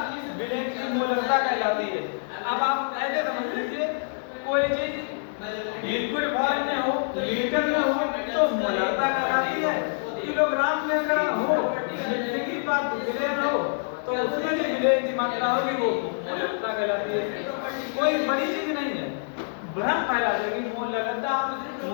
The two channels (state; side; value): silent; right; 61 dB below the other